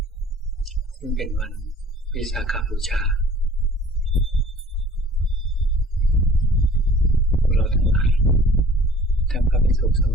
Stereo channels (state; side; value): normal; both; correlation 0.50